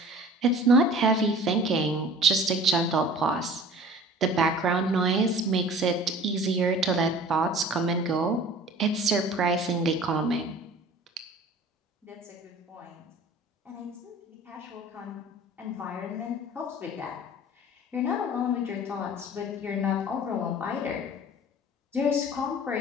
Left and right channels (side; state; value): both; normal; correlation 0.45